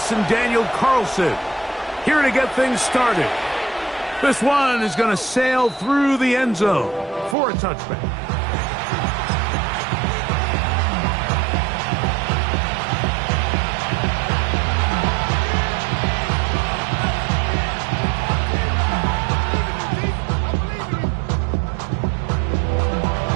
and Daniel Carlson here to get things started. This one is going to sail through the end zone for a touchback.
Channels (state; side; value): drops out; left; at 7.4 s